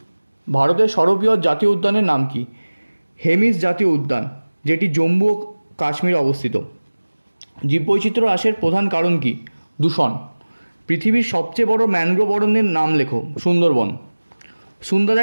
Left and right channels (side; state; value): both; inverted; correlation -1.00